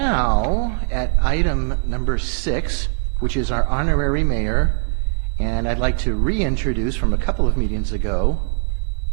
at item number 6, which is our honorary mayor. And I'd like to reintroduce from a couple of meetings ago,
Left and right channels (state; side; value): silent; left; digital silence